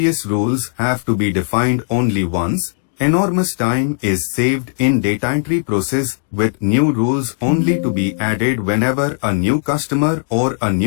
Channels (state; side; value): silent; right; digital silence